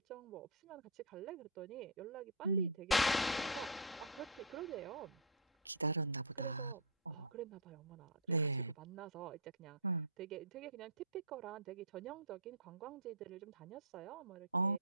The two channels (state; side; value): normal; both; correlation -0.13